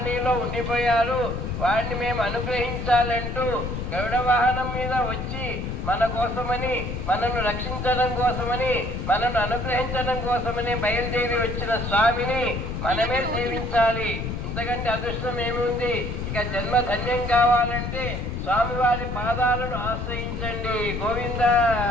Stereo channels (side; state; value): left; noise; rumble, 4 dB below the sound